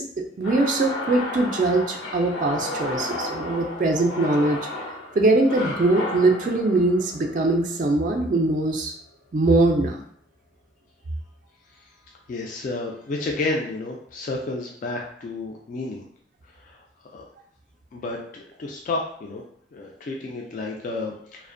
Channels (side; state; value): both; normal; correlation 0.53